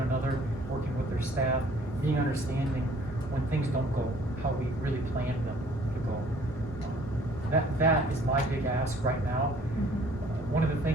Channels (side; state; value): both; normal; correlation 0.56